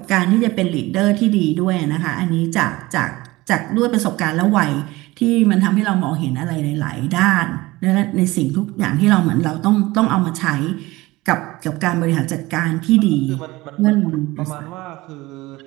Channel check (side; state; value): left; quieter; 20.1 dB